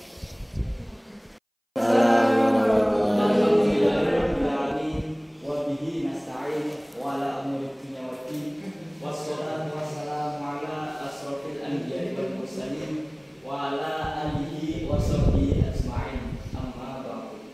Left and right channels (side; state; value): both; identical; correlation 1.00